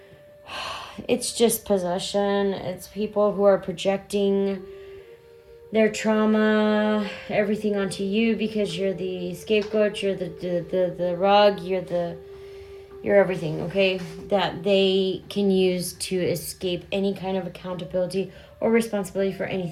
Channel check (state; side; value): identical; both; correlation 1.00